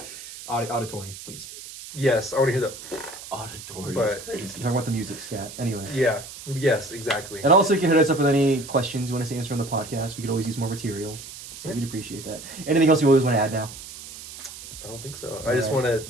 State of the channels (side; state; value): right; noise; hiss, 13 dB below the sound